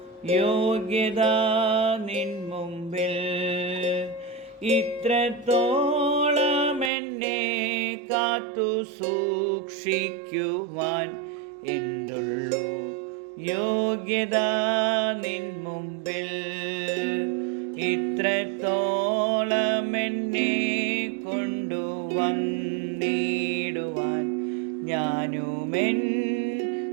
യോഗ്യത നിൻ മുമ്പിൽ. ഇത്രത്തോളം എന്നെ കാത്തു സൂക്ഷിക്കുവാൻ എന്തുള്ളൂ യോഗ്യത നിൻ മുമ്പിൽ. ഇത്രത്തോളം എന്നെ കൊണ്ടുവന്നിടുവാൻ ഞാനുമെൻ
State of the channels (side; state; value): left; drops out; at 6.9 s